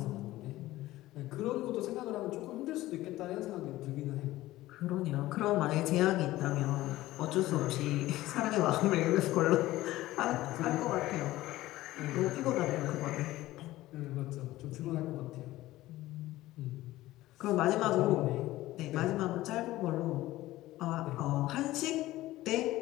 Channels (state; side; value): quieter; right; 16.6 dB